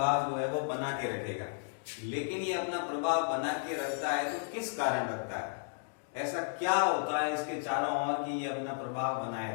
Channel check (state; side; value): silent; right; digital silence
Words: जो है वो बना के रखेगा। लेकिन ये अपना प्रभाव बना के रखता है तो किस कारण रखता है, ऐसा क्या होता है इसके चारों ओर कि ये अपना प्रभाव बनाए